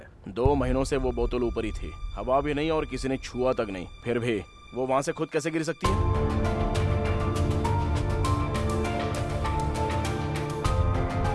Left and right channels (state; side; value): identical; both; correlation 1.00